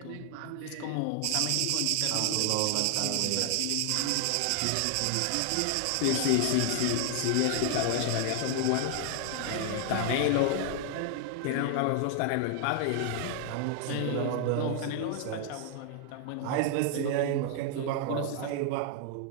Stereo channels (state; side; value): different; both; correlation 0.00